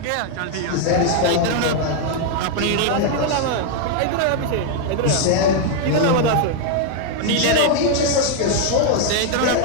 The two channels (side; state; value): both; different; correlation 0.00